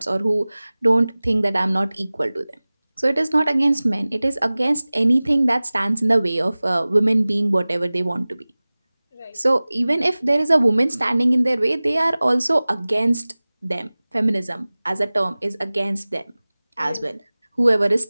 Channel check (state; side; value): inverted; both; correlation -0.99